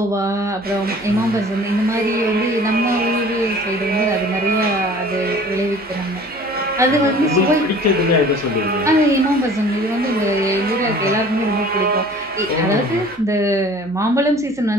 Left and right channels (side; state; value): right; noise; hum, 29 dB below the sound